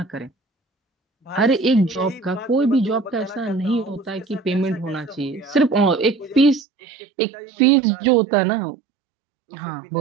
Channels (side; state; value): left; drops out; at 6.7 s